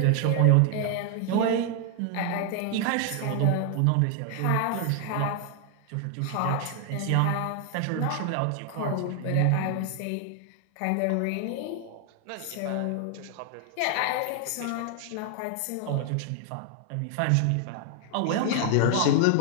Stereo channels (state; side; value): different; both; correlation 0.00